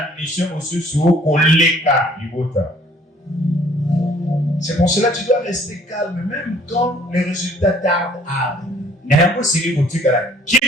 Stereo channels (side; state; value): both; normal; correlation 0.57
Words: mission mosusu koleka libota. C'est pour cela que tu dois rester calme même quand les résultats tardent à arriver. Je